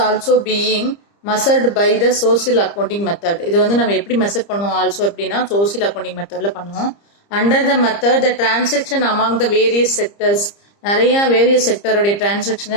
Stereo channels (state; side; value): late; right; 30 ms